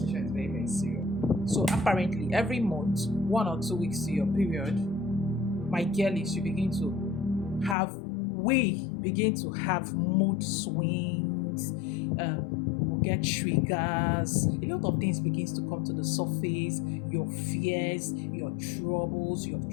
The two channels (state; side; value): drops out; right; at 7.8 s